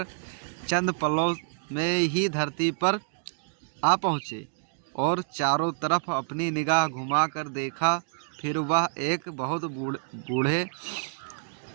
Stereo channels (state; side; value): silent; left; digital silence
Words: चंद पलों में ही धरती पर आ पहुँचे और चारों तरफ अपनी निगाह घुमाकर देखा। फिर वह एक बहुत बूढ़े